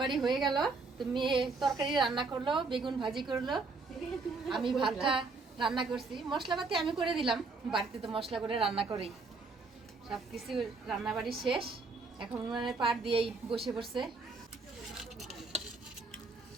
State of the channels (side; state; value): left; quieter; 4.0 dB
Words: হয়ে গেল, তুমি তরকারি রান্না করলো, বেগুন ভাজি করলো, আমি ভাতটা রান্না করছি। মশলাপাতি আমি করে দিলাম, বাড়িতে তো মশলা করে রান্না করি। সব কিছু রান্নাবাড়ি শেষ, এখন উনানের পাট দিয়েই বসে পড়ছে।